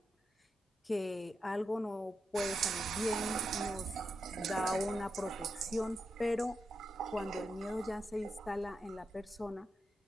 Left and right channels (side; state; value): both; normal; correlation 0.86